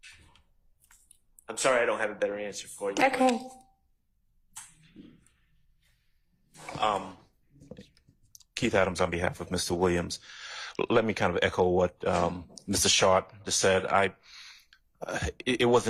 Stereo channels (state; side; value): identical; both; correlation 1.00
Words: I'm sorry I don't have a better answer for you. Okay. Keith Adams on behalf of Mr. Williams. Let me kind of echo what Mr. Sharp just said. It